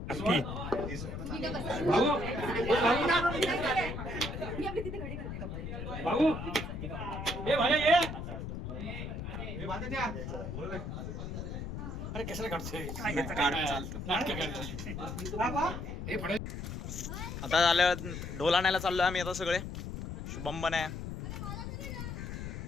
भाऊ ये भाई ये अरे कशाला काढतोय काढ, चालतं. नाटकं काढतोय. आता झालं ढोल आणायला चाललोय आम्ही आता सगळे. शुभम पण आहे,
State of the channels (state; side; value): noise; left; rumble, 6 dB below the sound